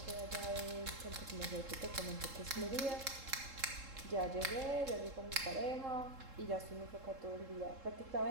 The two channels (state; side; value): late; left; 3.7 ms